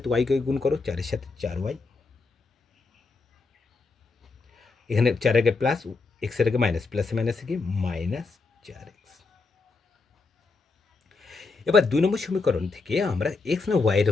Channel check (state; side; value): quieter; right; 4.1 dB